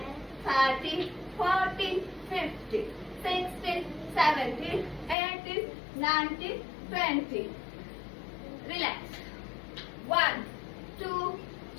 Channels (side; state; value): right; drops out; at 5.2 s